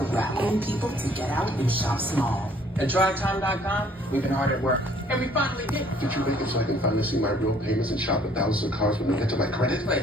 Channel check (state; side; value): normal; both; correlation 0.59